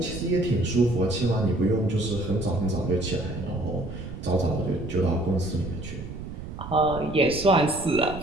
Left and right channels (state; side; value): noise; right; rumble, 10 dB below the sound